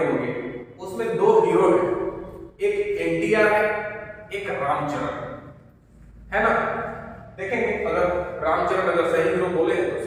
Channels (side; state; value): both; identical; correlation 1.00